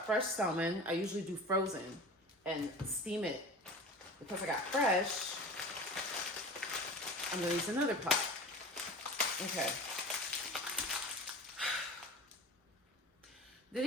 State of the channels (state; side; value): normal; both; correlation 0.35